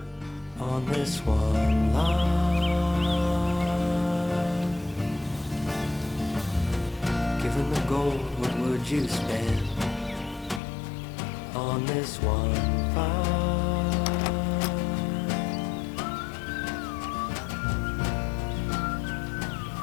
on this one line? Given the gold, what would you spend on this one find?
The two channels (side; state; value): right; drops out; at 10.6 s